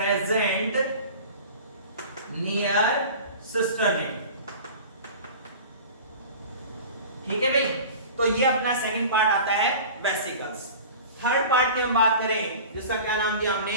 near cisternae. ठीक है भाई, तो ये अपना सेकंड पार्ट आता है वेसिकल्स। थर्ड पार्ट की हम बात करें जिसका क्या नाम दिया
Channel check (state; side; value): inverted; both; correlation -0.38